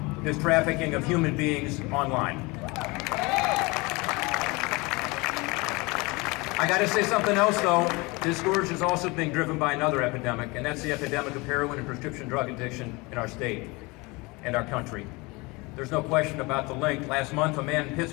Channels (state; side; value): quieter; right; 25.2 dB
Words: this trafficking of human beings online. I got to say something else, though. This scourge is also being driven by another epidemic, and that's the epidemic of heroin and prescription drug addiction in our state and our country. There's no question about the link. Last month, a man in